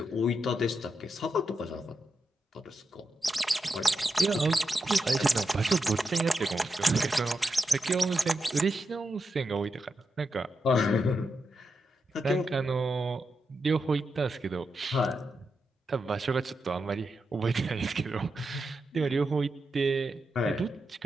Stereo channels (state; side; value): normal; both; correlation 0.86